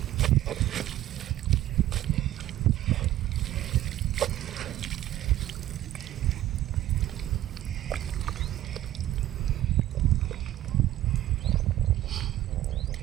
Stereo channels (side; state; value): left; quieter; 13.8 dB